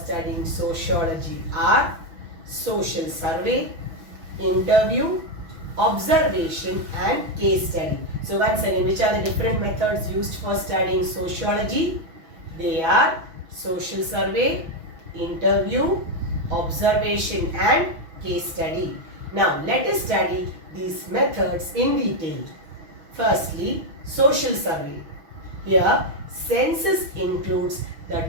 sociology are social survey, interview, observation and case study. So once again, which are the different methods used for studying sociology? They are social survey, interview, observation and case study. Now let us study these methods in detail. Firstly, social survey. Here, census includes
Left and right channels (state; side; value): late; left; 6.1 ms